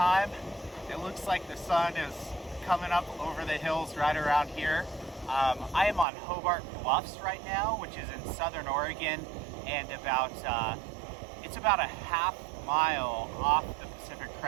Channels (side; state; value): left; drops out; at 6.1 s